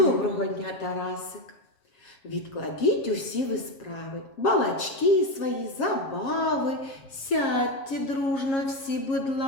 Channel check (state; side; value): late; right; 7.4 ms